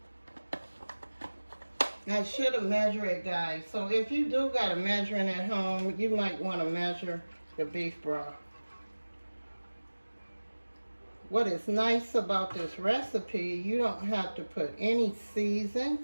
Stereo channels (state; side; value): inverted; both; correlation -1.00